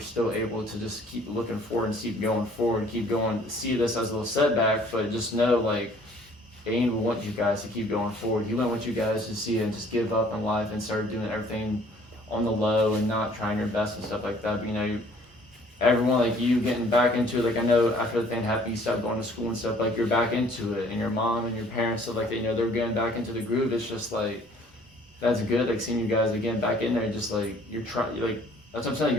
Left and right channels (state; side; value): normal; both; correlation 0.57